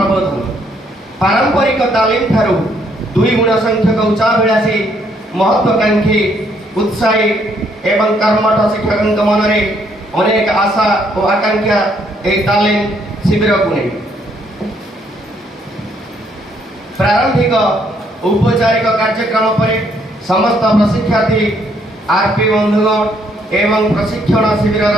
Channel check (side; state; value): both; normal; correlation 0.69